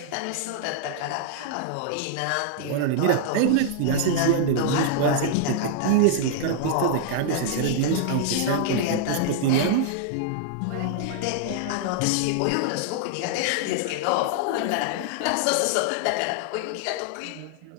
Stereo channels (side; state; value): both; different; correlation -0.01